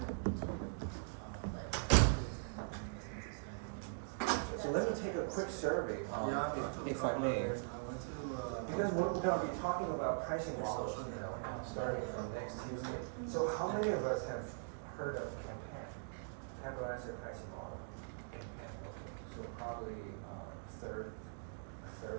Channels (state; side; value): silent; left; digital silence